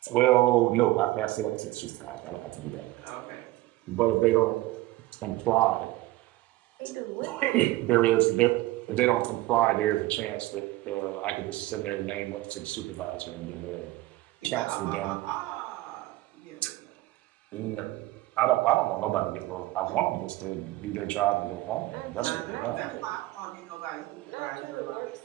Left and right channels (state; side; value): quieter; left; 18.0 dB